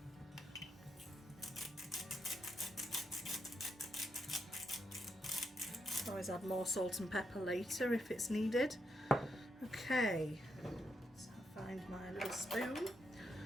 Always add more salt and pepper later if it's needed. Okay, so I'll find my little spoon.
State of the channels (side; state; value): both; normal; correlation 0.81